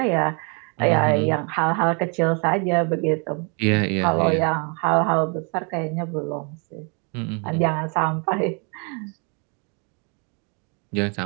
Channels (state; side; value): quieter; left; 35.8 dB